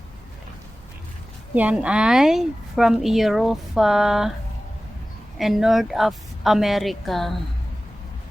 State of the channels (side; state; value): both; normal; correlation 0.97